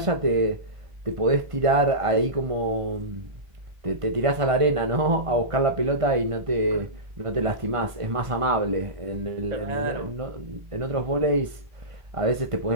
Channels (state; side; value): late; left; 1.5 ms